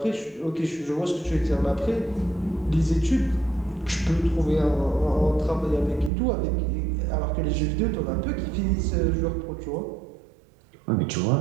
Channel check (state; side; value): drops out; left; at 6.1 s